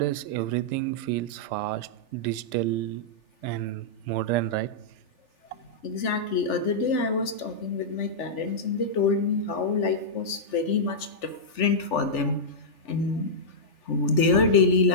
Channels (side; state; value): right; late; 3.4 ms